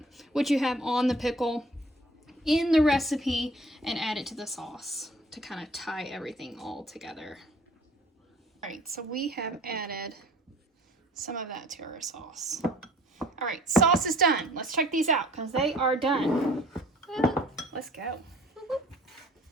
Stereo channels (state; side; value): normal; both; correlation 0.52